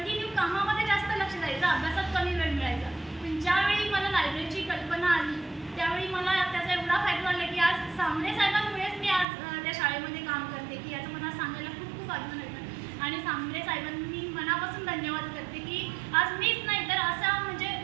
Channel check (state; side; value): drops out; left; at 9.2 s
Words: कामामध्ये जास्त लक्ष द्यायचं, अभ्यासात कमी वेळ मिळायचा. पण ज्यावेळी मला लायब्ररीची कल्पना आली त्यावेळी मला त्याचा एवढा फायदा झाला की आज सांबरे साहेबांमुळेच मी आज त्या शाळेमध्ये काम करते की याचं मला सांगायला खूप खूप अभिमान वाटतं. आणि सांबरे साहेबांनी मनापासून धन्यवाद करते की आज मीच नाही तर असा म्हणजे